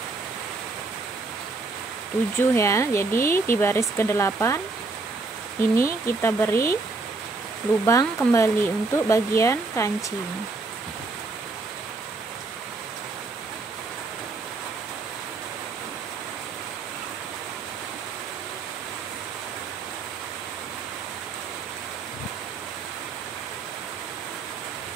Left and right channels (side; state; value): left; quieter; 3.8 dB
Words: 7 ya. Jadi di baris ke-8 ini kita beri lubang kembali untuk bagian kancing.